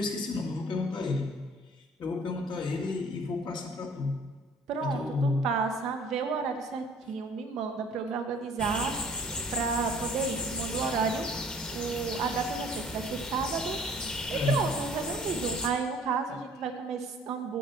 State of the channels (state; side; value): normal; both; correlation 0.53